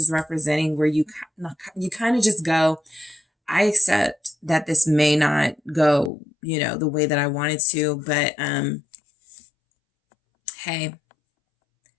representing where you kind of just go, I accept that this may not go, the way that I wanted to, but hey,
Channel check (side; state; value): right; drops out; at 6.1 s